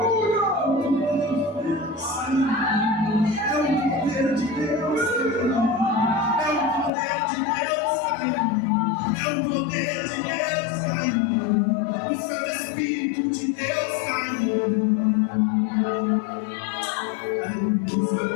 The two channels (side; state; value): right; drops out; at 6.9 s